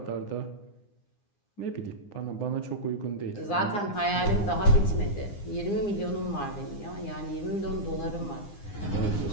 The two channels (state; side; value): late; right; 9.8 ms